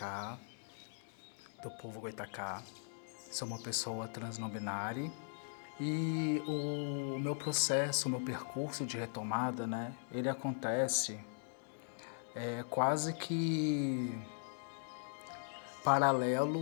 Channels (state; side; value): silent; right; digital silence